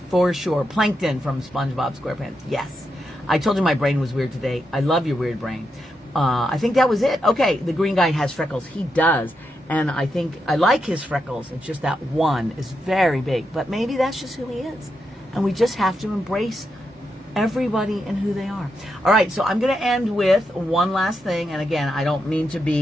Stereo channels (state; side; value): normal; both; correlation 0.84